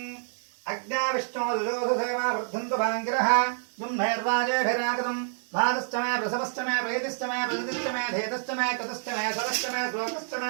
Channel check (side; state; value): left; silent; 59 dB below the other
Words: अग्नाविष्णो दुजोधसेवा वर्धन्तु भाङ्गिरः दुम्नैर्वाजेभिरागतम् भातश्च मे प्रसवश्च मे प्रेतिश्च मे प्रजतिश्च मे धेतश्च मे कृतश्च मे सरश्च मे श्लोकश्च